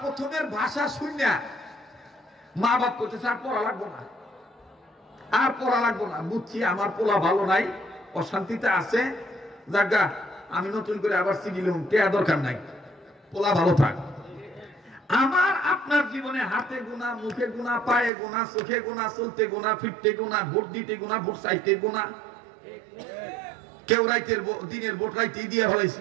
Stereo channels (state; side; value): drops out; left; at 18.1 s